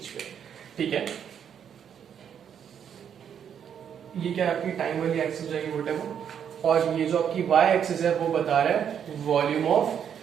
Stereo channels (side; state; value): left; quieter; 8.4 dB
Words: पे, ठीक है। ये क्या आपकी टाइम वाली एक्सिस जाएगी वोटेवर, और ये जो आपकी वाई एक्सिस है वो बता रहा है volume of